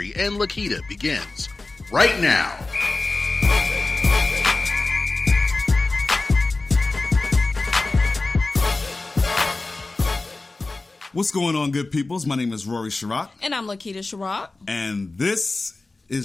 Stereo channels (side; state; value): right; quieter; 3.3 dB